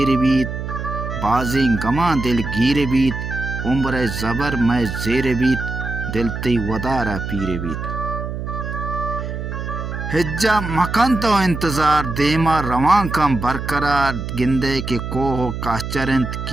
بیت بازیں گما دل گیر بیت عمر زبر میں زیر بیت دلتی ودارا پیر بیت ہجا مکان تو انتظار دیما روان کم برقرار گندے کے کوہ کاچرنت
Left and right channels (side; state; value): right; noise; hum, 6 dB below the sound